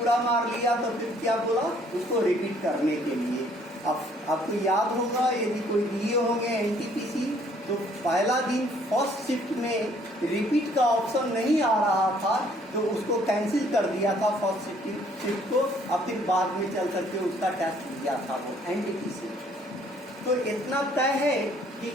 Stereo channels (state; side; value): normal; both; correlation 0.62